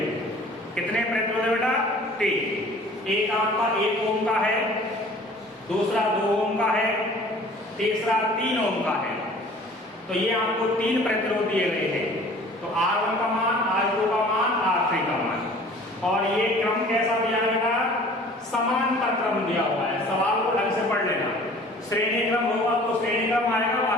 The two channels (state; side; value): normal; both; correlation 0.48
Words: कितने प्रतिरोध है बेटा? 3। एक आपका 1 ओम का है, दूसरा 2 ओम का है, तीसरा 3 ओम का है। तो ये आपको 3 प्रतिरोध दिए गए हैं। तो R1 का मान, R2 का मान, R3 का मान। और ये क्रम कैसा दिया गया? समांतर क्रम दिया हुआ है। सवाल को ढंग से पढ़ लेना। श्रेणी क्रम होगा तो श्रेणी क्रम आएगा,